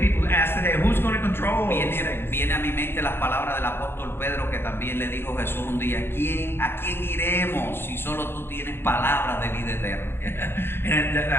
ask today, who's going to control these things? Viene a mi mente las palabras del apóstol Pedro que también le dijo Jesús un día, ¿a quién iremos si solo tú tienes palabras de vida eterna?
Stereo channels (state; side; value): late; right; 0.11 ms